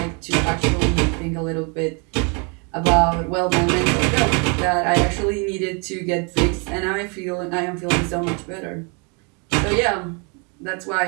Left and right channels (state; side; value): quieter; left; 34.2 dB